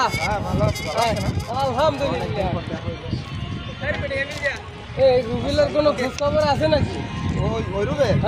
আলহামদুলিল্লাহ। এই রুবেলের কোনো খোঁজ খবর আছে নাকি? ওই রুবেল?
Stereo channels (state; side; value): identical; both; correlation 1.00